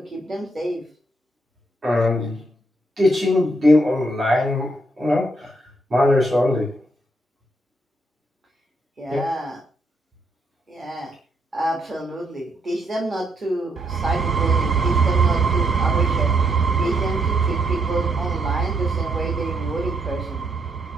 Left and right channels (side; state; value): both; normal; correlation 0.76